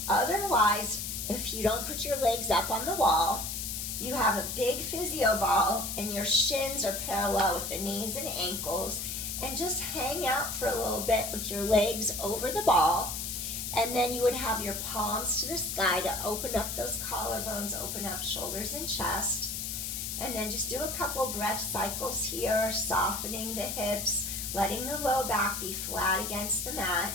otherwise, if you don't put your legs up on the wall, you have a big physio ball, and your shins are parallel with the knees and ankles, and just hang out for a little bit with your legs over the ball, and then you would have your palms to the sky to open up those collarbones, open up shoulders and chest, and then just do a couple breath cycles here, softening the hips, letting the low back be flat against the mat,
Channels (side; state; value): left; noise; hiss, 4 dB below the sound